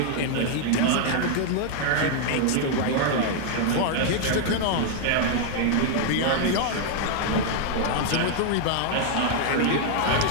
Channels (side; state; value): both; different; correlation 0.00